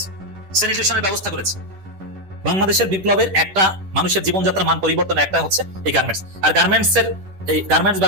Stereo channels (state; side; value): late; left; 10 ms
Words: স্যানিটেশনের ব্যবস্থা করেছে। বাংলাদেশের বিপ্লবের একটা মানুষের জীবনযাত্রার মান পরিবর্তন একটা হচ্ছে এই গার্মেন্টস। আর এই গার্মেন্টস